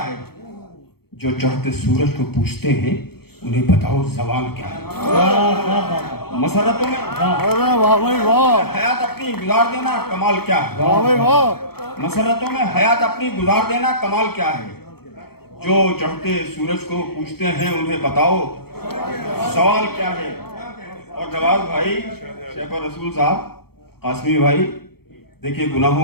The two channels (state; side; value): late; right; 0.96 ms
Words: जो चढ़ते सूरज को पूछते हैं उन्हें बताओ सवाल क्या है। मसरतों में हयात अपनी गुजार देना कमाल क्या है, मसरतों में हयात अपनी गुजार देना कमाल क्या है, जो चढ़ते सूरज को पूछते हैं उन्हें बताओ सवाल क्या है। और नवाज भाई, शेफर रसूल साहब, कासमी भाई, देखिए